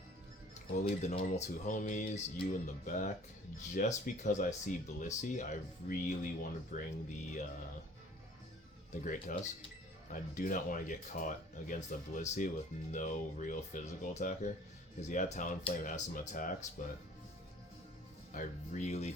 We'll leave the normal two homies, you in the back. Just because I see Blissey, I really want to bring the Great Tusk. I do not want to get caught against a Blissey with no real physical attacker. Because yeah, Talonflame has some attacks, but I really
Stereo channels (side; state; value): both; normal; correlation 0.51